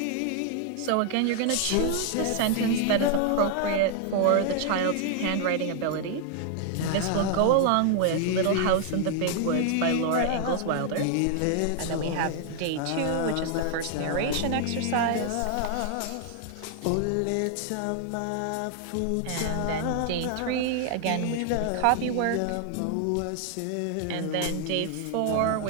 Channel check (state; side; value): different; both; correlation 0.00